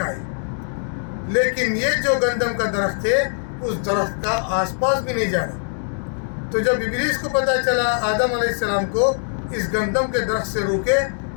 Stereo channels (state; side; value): silent; right; 64 dB below the other